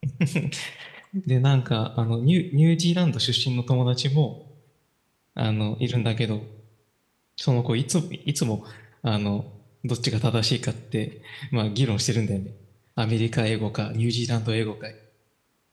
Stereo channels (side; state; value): both; identical; correlation 1.00